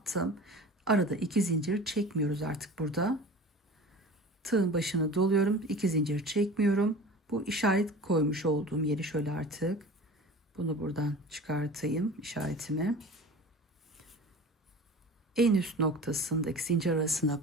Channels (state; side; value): normal; both; correlation 0.38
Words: Arada 2 zincir çekmiyoruz artık burada. Tığın başını doluyorum. 2 zincir çekmiyorum. Bu işaret koymuş olduğum yeri şöyle artık. Bunu buradan çıkartayım işaretimi. En üst noktasındaki zincir arasına